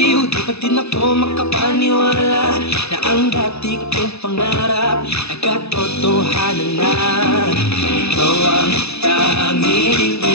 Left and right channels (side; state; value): right; late; 0.79 ms